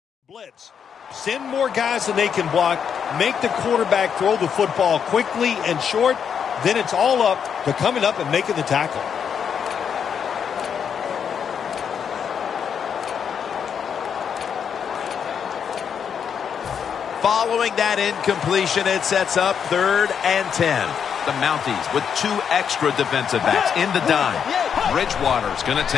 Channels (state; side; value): quieter; right; 7.5 dB